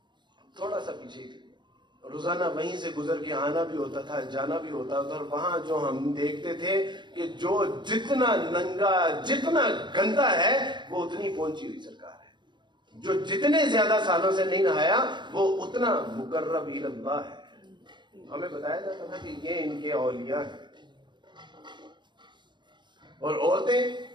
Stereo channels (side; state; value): left; late; 0.22 ms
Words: تھوڑا سا پیچھے ہی تھی، روزانہ وہیں سے گزر کے آنا بھی ہوتا تھا، جانا بھی ہوتا تھا، اور وہاں جو ہم دیکھتے تھے کہ جو جتنا ننگا، جتنا گندا ہے وہ اتنی پہنچی ہوئی سرکار ہے، جو جتنے زیادہ سالوں سے نہیں نہایا وہ اتنا مقرب اللہ ہے۔ ہمیں بتایا جاتا تھا کہ یہ ان کے اولیاء ہیں، اور عورتیں